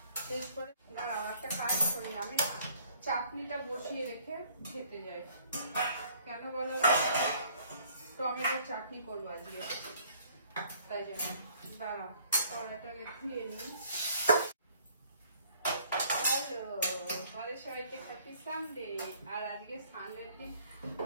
শেষ করে একটা কাজ করি, আমি চাটনিটা বসিয়ে রেখে খেতে যাই। কেন বলো, টমেটোর চাটনি করবো আজকে, তাই জন্য দাঁড়া কড়াটাকে ধুয়ে নিই। হ্যালো, আমাদের সবাইকে হ্যাপি সানডে। আর আজকে সানডের দিন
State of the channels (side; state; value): both; inverted; correlation -0.60